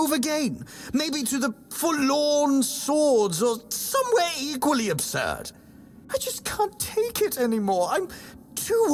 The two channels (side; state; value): both; identical; correlation 1.00